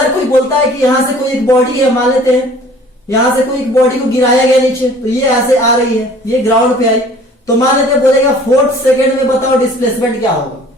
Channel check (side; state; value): both; normal; correlation 0.50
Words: कोई बोलता है कि यहां से कोई एक बॉडी है, मान लेते हैं यहां से कोई एक बॉडी को गिराया गया नीचे, तो ये ऐसे आ रही है, ये ग्राउंड पे आई, तो मान लेते हैं बोलेगा 4th सेकेंड में बताओ डिस्प्लेसमेंट क्या होगा।